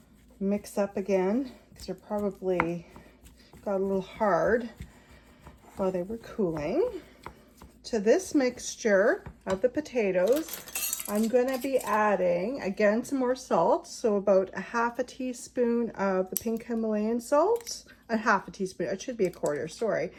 mix up again, because they're probably got a little hard while they were cooling. To this mixture of the potatoes, I'm going to be adding again some more salt, so about a 1/2 teaspoon of the pink Himalayan salt, a 1/2 teaspoon, it should be a 1/4, sorry,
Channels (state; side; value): identical; both; correlation 1.00